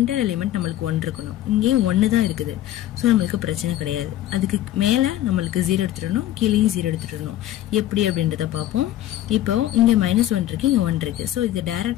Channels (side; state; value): right; quieter; 13.4 dB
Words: எலிமெண்ட் நம்மளுக்கு 1 இருக்கணும். இங்கே 1 தான் இருக்குது. சோ நம்மளுக்கு பிரச்சனை கிடையாது. அதுக்கு மேல நம்மளுக்கு 0 எடுத்துடணும், கீழேயும் 0 எடுத்துடணும். எப்படி அப்படின்றத பார்ப்போம். இப்போ இங்க -1 இருக்கு, இங்க 1 இருக்கு. சோ இதை